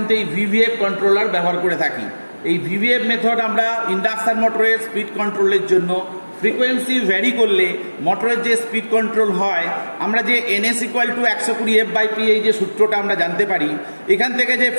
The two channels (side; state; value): both; inverted; correlation -1.00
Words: এই ভিভিএফ কন্ট্রোলার ব্যবহার করে থাকি। এই ভিভিএফ মেথড আমরা ইন্ডাকশান মোটরের স্পিড কন্ট্রোলের জন্য, ফ্রিকোয়েন্সি ভ্যারি করলে মোটরের যে স্পিড কন্ট্রোল হয়, আমরা যে NS = 120F/P এই যে সূত্রটা আমরা জানতে পারি, এখান থেকে যে